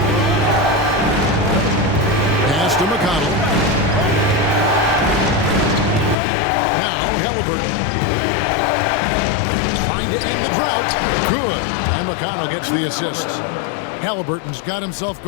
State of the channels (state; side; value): drops out; right; at 6.2 s